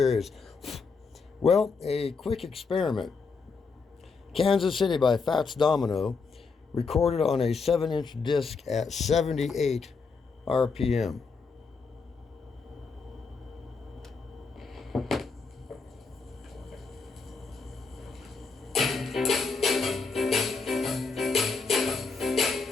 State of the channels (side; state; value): right; quieter; 4.7 dB